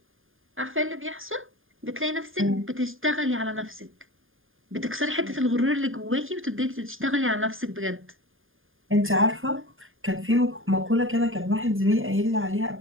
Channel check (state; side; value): late; left; 0.59 ms